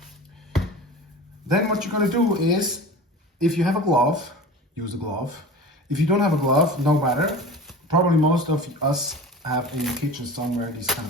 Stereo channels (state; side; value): normal; both; correlation 0.36